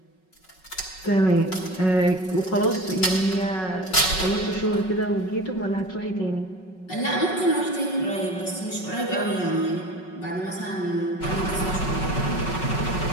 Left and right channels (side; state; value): right; late; 5.4 ms